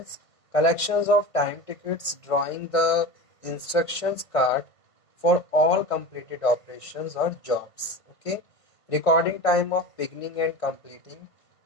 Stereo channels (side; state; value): right; late; 1.6 ms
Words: collections of time tickets, drawing the instructions card for all completed operations or jobs. Okay, recording time of beginning and completing